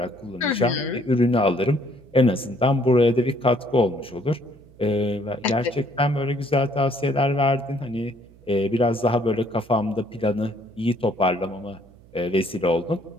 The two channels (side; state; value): right; noise; hum, 25 dB below the sound